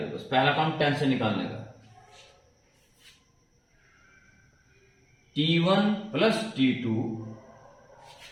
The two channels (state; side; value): identical; both; correlation 1.00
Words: बस पहला काम टेंशन निकालने का। T1 प्लस T2